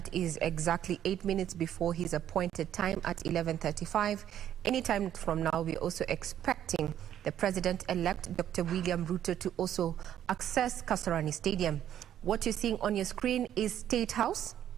is exactly 8 minutes before his appointed time at 11:35. Anytime from now, we're also expecting the President-elect, Dr. William Ruto, to also access Kasarani Stadium. What you're seeing on your screen is State House,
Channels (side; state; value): left; quieter; 10.7 dB